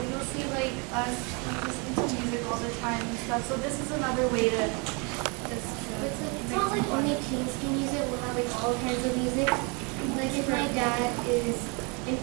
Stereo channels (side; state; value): left; quieter; 31.9 dB